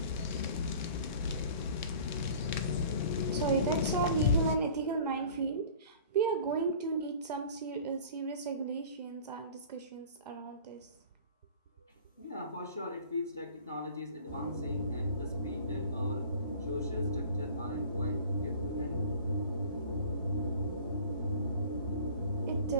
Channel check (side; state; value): both; inverted; correlation -0.45